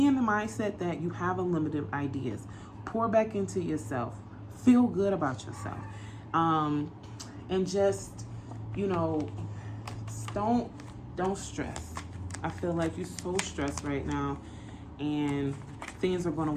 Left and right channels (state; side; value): identical; both; correlation 1.00